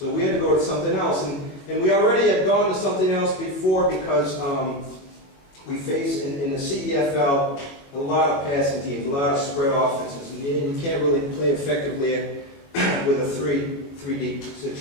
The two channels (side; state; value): right; late; 22 ms